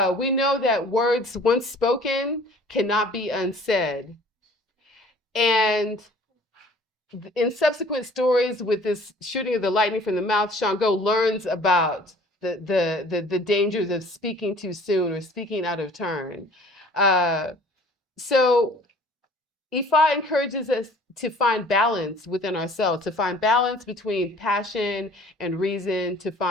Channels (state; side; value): normal; both; correlation 0.51